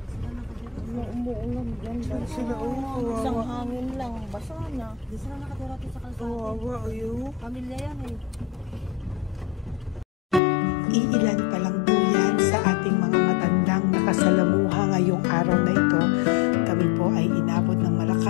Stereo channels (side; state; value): right; drops out; at 10.4 s